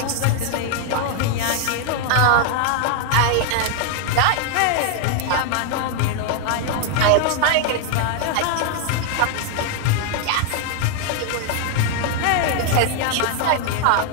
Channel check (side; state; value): both; different; correlation 0.00